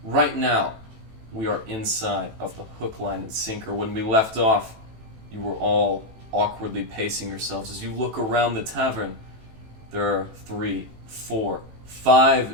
Right now, we are inside of the hook, line, and sinker. When we left off, you were all awkwardly pacing yourselves. As you look around the tavern, there are 3, 4,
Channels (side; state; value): left; late; 18 ms